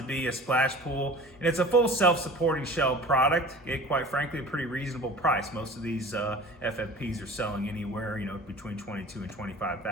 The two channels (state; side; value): normal; both; correlation 0.41